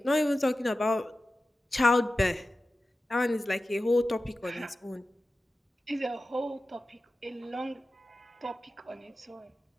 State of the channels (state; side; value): normal; both; correlation 0.94